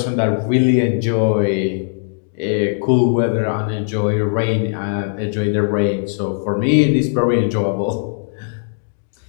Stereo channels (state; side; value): silent; right; digital silence